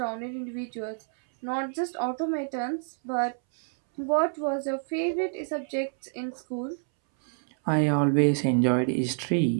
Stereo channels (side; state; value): left; silent; 60 dB below the other